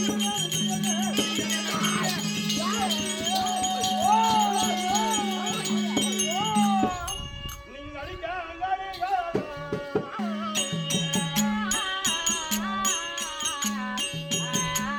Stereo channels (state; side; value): identical; both; correlation 1.00